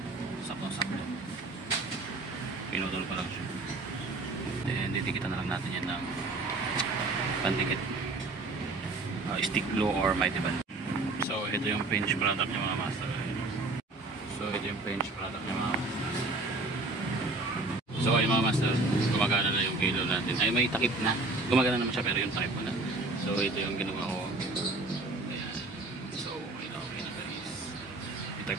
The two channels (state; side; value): quieter; left; 3.2 dB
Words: sakto-sakto, pinutol pa lang siya. Then didikita na lang natin yan ng pandikit, stick glue or mighty band. So ito yung pinch product niya mga master. So ito yung pinch product niya mga master. So ayun mga master, gumagana na yung kilo natin. Ay may takip na, gumagana naman siya pero yung takip mo na. So ito yung ginawa ko. Ayan. So okay na guys.